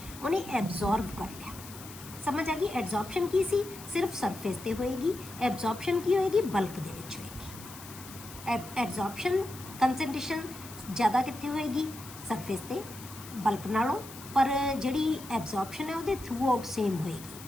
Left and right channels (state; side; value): noise; left; hiss, 15 dB below the sound